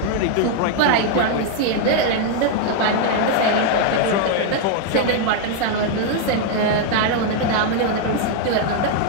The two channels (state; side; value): different; both; correlation 0.00